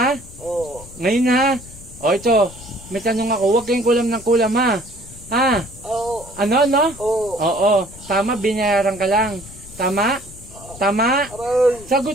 Ngayon, ha? O, ito, may tanong ako. Huwag kayong kulam ng kulam, ha? Ha? Ano? Oo. Tama, binayaran ka lang. Tama?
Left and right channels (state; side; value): noise; left; rumble, 18 dB below the sound